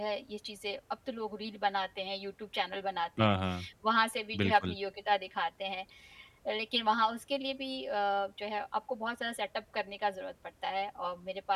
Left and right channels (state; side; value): identical; both; correlation 1.00